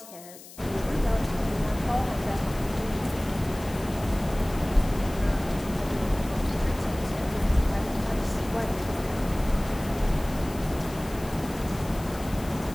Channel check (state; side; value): noise; left; hiss, 18 dB below the sound